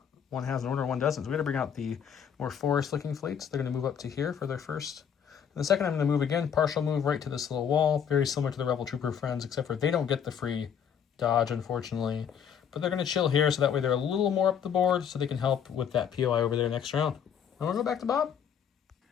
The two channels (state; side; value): quieter; right; 8.0 dB